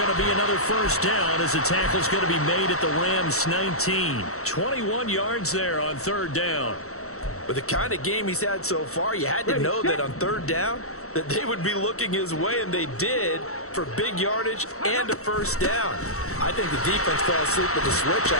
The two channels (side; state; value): right; late; 0.64 ms